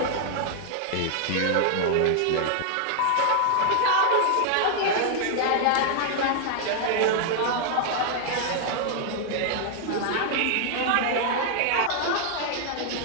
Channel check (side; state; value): both; different; correlation 0.00